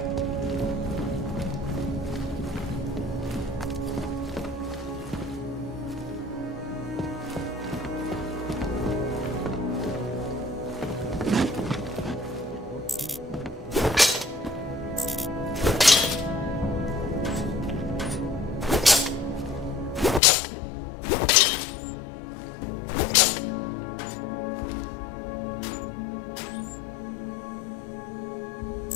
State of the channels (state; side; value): drops out; right; at 20.2 s